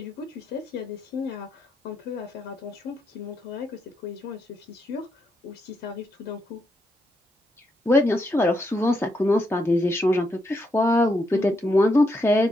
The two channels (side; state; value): both; normal; correlation 0.80